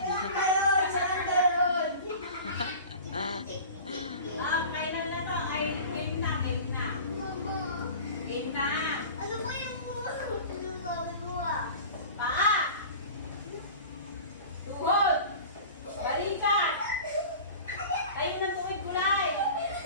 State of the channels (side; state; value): both; inverted; correlation -0.38